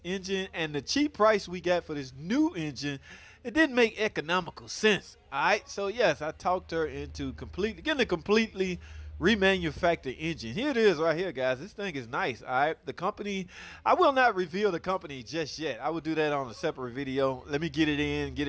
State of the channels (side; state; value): both; identical; correlation 1.00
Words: engine and the cheap price we got for this new engine, it didn't make economical sense, all right? So yes, I talked her into getting a completely remanufactured engine. Here it is right here, guys. This thing is nice, all right? The company, I will not reveal the company just yet. I will do that on a separate video. Let me get it in, get